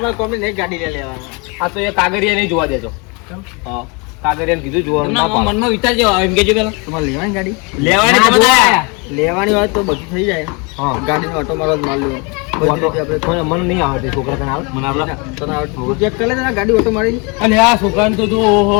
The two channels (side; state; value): right; quieter; 30.2 dB